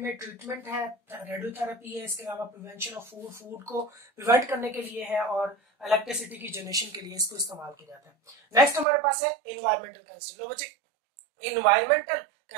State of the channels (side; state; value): left; drops out; at 8.8 s